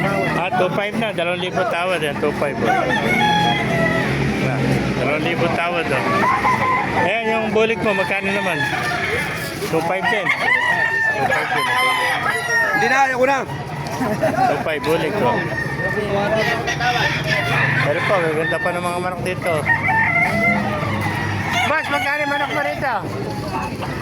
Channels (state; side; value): identical; both; correlation 1.00